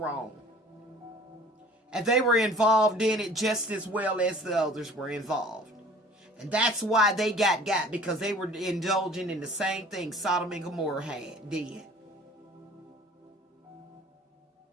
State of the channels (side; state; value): both; normal; correlation 0.48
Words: And they were involved in it just as well as the others were involved. And that's why they got, because they were indulging in the same thing Sodom and Gomorrah did.